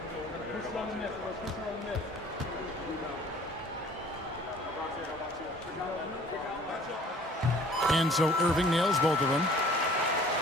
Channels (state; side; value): normal; both; correlation 0.51